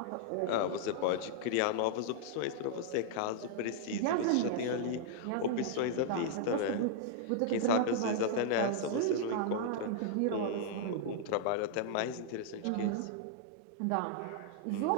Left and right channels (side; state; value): both; different; correlation -0.01